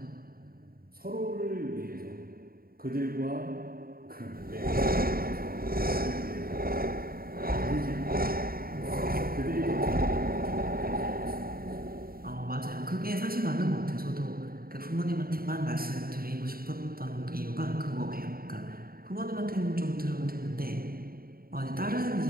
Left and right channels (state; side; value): late; left; 0.43 ms